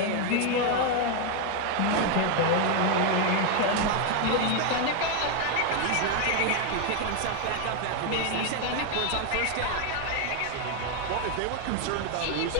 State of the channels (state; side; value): different; both; correlation 0.01